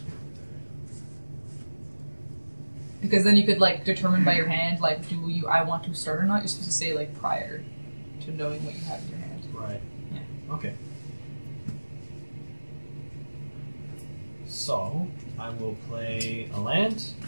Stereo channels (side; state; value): both; inverted; correlation -1.00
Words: Because then you could like determine by your hand, like, I want to start or not. You're supposed to say like prior to knowing what you have in your hand. Right. Yeah. Okay. So, I will play a land.